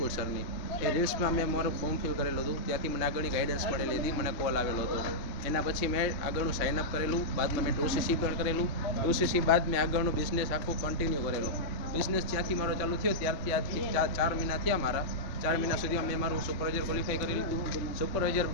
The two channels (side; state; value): right; late; 3.4 ms